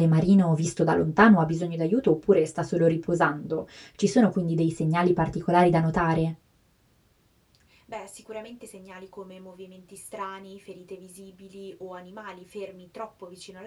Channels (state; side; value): identical; both; correlation 1.00